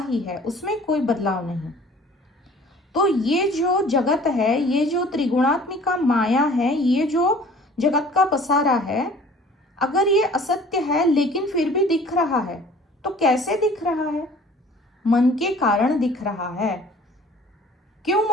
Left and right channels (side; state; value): both; normal; correlation 0.49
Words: ही है, उसमें कोई बदलाव नहीं। तो ये जो जगत है, ये जो त्रिगुणात्मिका माया है, ये जो जगत का पसारा है, अगर ये असत्य है लेकिन फिर भी दिख रहा है, तो कैसे दिख रहा है? मन के कारण दिख रहा है। क्यों